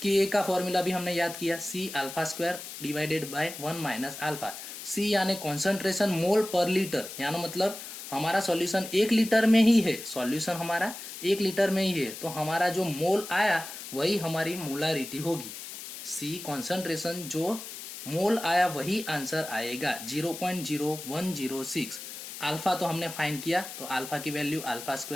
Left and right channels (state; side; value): noise; left; hiss, 11 dB below the sound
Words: Ka का फॉर्मूला भी हमने याद किया C alpha square divided by 1 minus alpha. C यानी कॉन्सेंट्रेशन मोल पर लीटर, यानी मतलब हमारा सॉल्यूशन 1 लीटर में ही है, तो हमारा जो मोल आया वही हमारी मोलारिटी होगी। C कॉन्सेंट्रेशन जो मोल आया वही आंसर आएगा 0.0106। अल्फा तो हमने फाइंड किया तो अल्फा की वैल्यू अल्फा